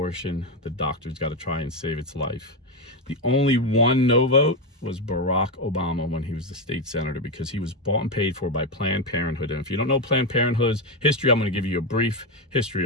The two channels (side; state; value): both; normal; correlation 0.09